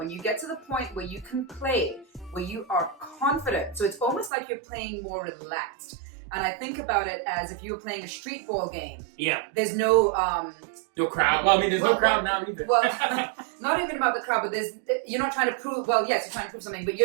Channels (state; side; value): drops out; left; at 4.3 s